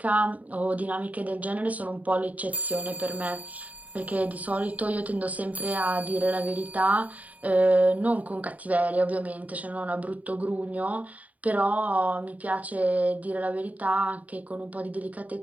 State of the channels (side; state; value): left; late; 0.072 ms